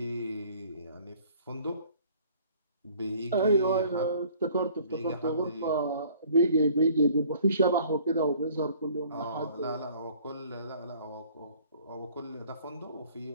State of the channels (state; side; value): inverted; both; correlation -0.54